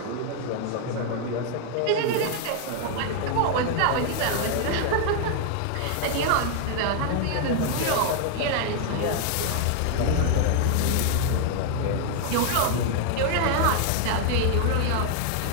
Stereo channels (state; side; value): different; both; correlation 0.00